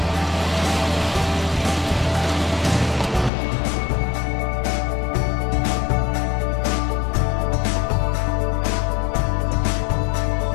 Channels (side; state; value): right; drops out; at 3.3 s